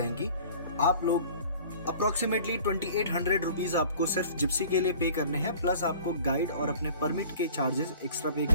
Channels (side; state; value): both; inverted; correlation -0.45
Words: आप लोग अप्रोक्सीमेटली 2800 रुपीज आपको सिर्फ जिप्सी के लिए पे करने हैं, प्लस आपको गाइड और अपने परमिट के चार्जेस एक्स्ट्रा पे